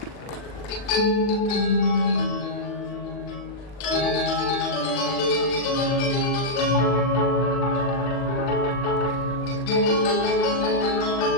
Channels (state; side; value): late; right; 39 ms